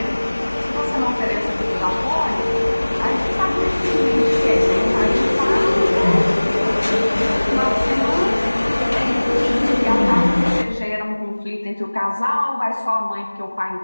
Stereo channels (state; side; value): inverted; both; correlation -1.00